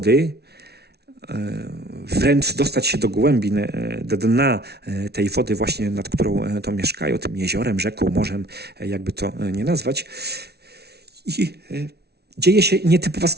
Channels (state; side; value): late; left; 0.48 ms